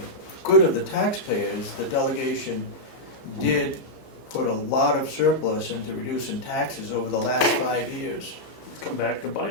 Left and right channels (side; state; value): right; late; 15 ms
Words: good of the taxpayers, the delegation did put a lot of surplus into reducing taxes over the last 5 years. Come back to